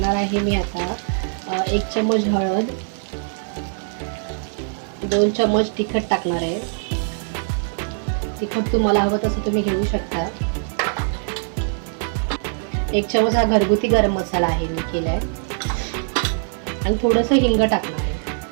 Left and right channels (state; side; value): silent; left; 64 dB below the other